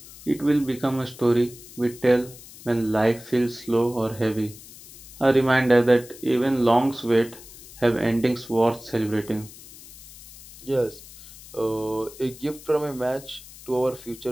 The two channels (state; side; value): noise; left; hiss, 18 dB below the sound